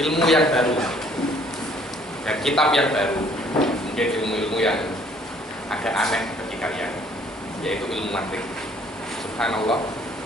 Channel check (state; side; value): normal; both; correlation 0.60